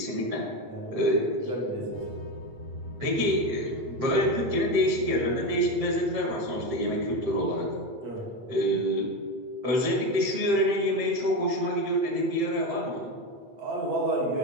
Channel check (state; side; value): late; left; 8.2 ms